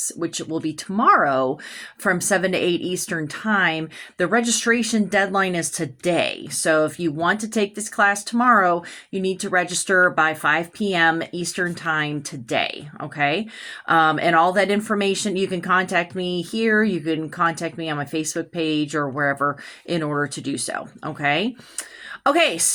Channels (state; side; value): identical; both; correlation 1.00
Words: which will be tomorrow from 7 to 8 Eastern Time, the registration deadline is today. So if you want to take this class tomorrow, you need to register by 5 p.m. Eastern Time today. Okay. And all that information, you can contact me here. You can contact me on my Facebook page or wherever in order to do so. Okay. Okay,